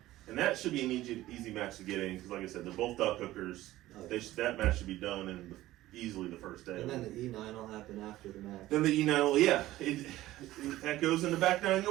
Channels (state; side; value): quieter; left; 15.9 dB